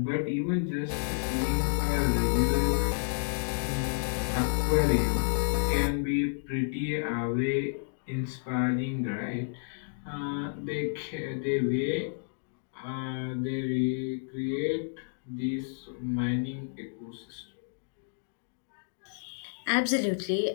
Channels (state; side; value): silent; right; digital silence